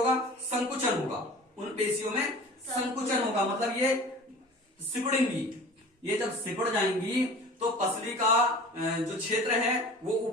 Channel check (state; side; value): normal; both; correlation 0.41